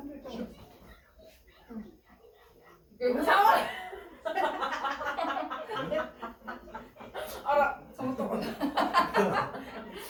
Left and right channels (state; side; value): identical; both; correlation 1.00